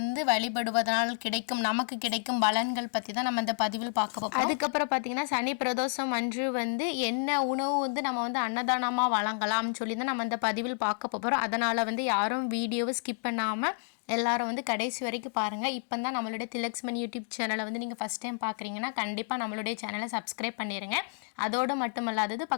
வழிபடுவதனால் நமக்கு கிடைக்கும் பலன்கள் பற்றி தான் நம்ம இந்த பதிவில் பார்க்க போகிறோம். அதுக்கப்புறம் பார்த்தீங்கன்னா, சனி பிரதோஷம் அன்று என்ன உணவு நம்ம அன்னதானமாக வழங்கலாம்னு சொல்லி தான் நம்ம இந்த பதிவில் பார்க்க போகிறோம். அதனால் யாரும் வீடியோவை ஸ்கிப் பண்ணாமல் எல்லாரும் கடைசி வரைக்கும் பாருங்கள். இப்போ தான் நம்மளுடைய திலக்ஸ்மன் யூடியூப் சேனலை நீங்கள் ஃபஸ்ட் டைம் பார்க்குறீங்கன்னா கண்டிப்பாக நம்மளுடைய சேனலை சப்ஸ்கிரைப் பண்ணிடுங்க. அதோடு மட்டுமல்லாதது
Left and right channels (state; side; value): silent; right; 58 dB below the other